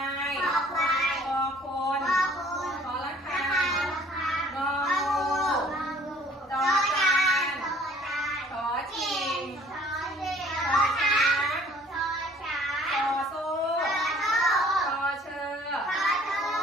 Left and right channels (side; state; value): both; normal; correlation 0.55